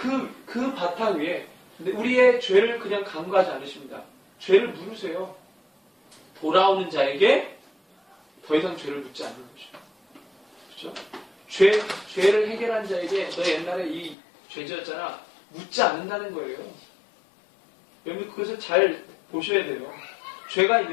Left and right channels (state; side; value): drops out; right; at 14.2 s